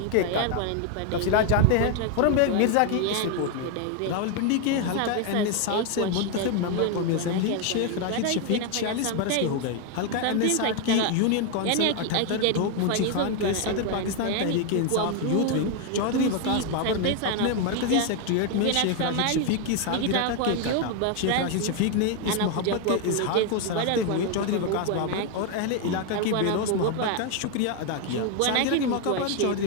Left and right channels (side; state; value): both; different; correlation 0.01